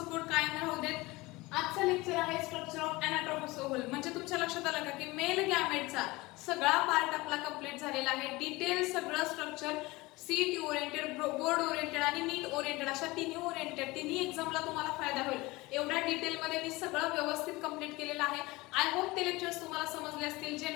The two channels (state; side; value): quieter; right; 21.7 dB